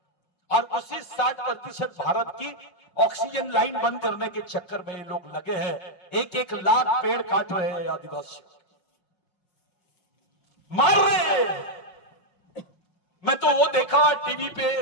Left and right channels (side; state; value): right; late; 5.6 ms